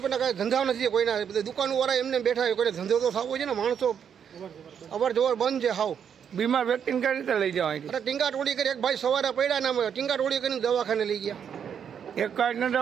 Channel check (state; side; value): quieter; left; 7.9 dB